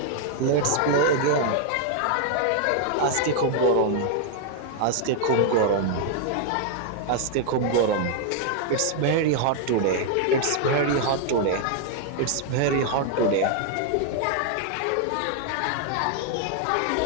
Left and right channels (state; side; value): different; both; correlation 0.00